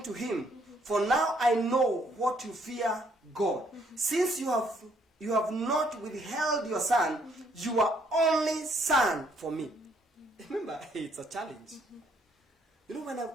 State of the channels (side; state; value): both; normal; correlation 0.68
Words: to him, for now I know what you fear God. Since you have not withheld your son, you are only son for me. Remember, it's a challenge. You know, when I